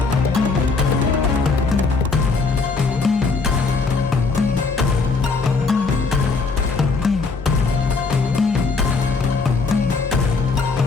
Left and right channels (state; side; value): quieter; right; 4.3 dB